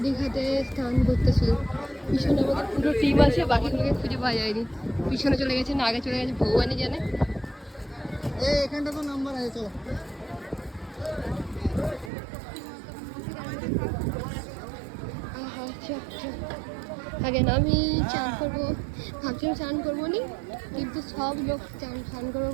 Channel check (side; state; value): left; drops out; at 12.1 s